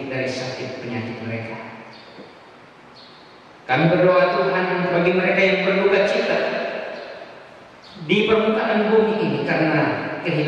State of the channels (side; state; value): both; identical; correlation 1.00